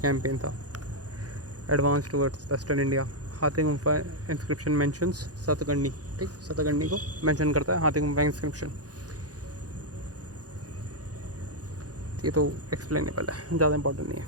था। एडवांस टुवर्ड्स वेस्टर्न इंडिया, हाथी गुम्फा इंस्क्रिप्शन मेंशंस सतगंडी, ठीक, सतगंडी को मेंशन करता है हाथी गुम्फा इंस्क्रिप्शन। ये तो एक्सप्लेनेबल है, ज़्यादा इंपॉर्टेंट नहीं है।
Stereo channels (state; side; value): late; left; 0.68 ms